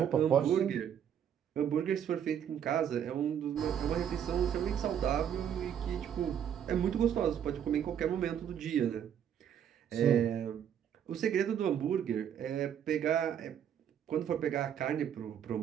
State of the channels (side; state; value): left; quieter; 9.1 dB